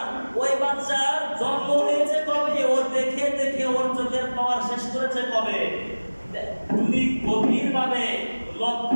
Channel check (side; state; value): both; inverted; correlation -1.00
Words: ওই বাচ্চার জন্ম হয়েছে কবে, ও দেখে দেখে ওর চোখের পাওয়ার শেষ করেছে কবে। যদি গভীরভাবে